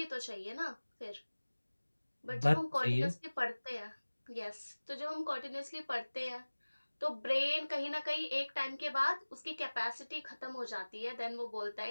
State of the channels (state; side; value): inverted; both; correlation -1.00